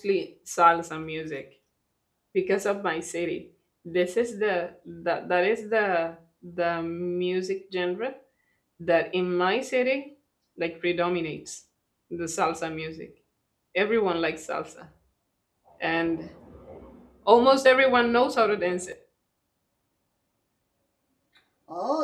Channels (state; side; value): identical; both; correlation 1.00